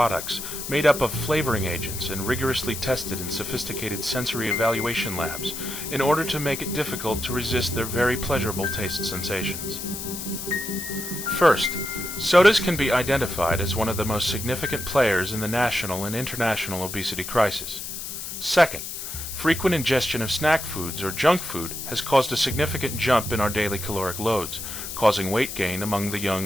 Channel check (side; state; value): left; noise; hiss, 7 dB below the sound